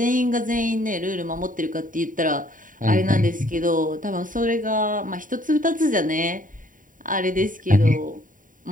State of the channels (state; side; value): late; left; 0.39 ms